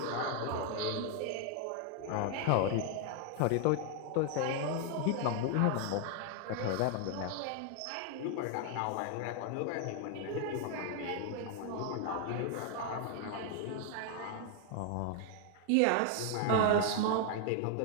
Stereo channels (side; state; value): both; different; correlation 0.00